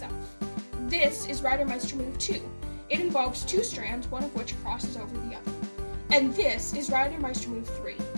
This is Reidemeister move 2. It involves 2 strands, one of which crosses over the other. And this is Reidemeister move 3.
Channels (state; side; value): inverted; both; correlation -1.00